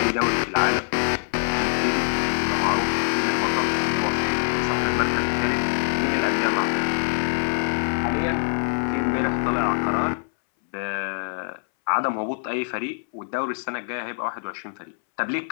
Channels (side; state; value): right; silent; 62 dB below the other